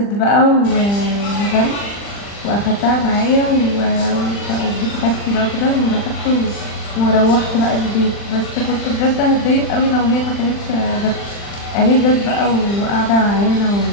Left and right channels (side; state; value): right; late; 40 ms